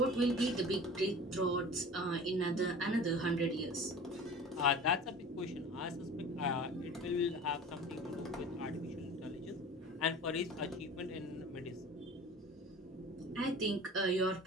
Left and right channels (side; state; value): both; normal; correlation 0.39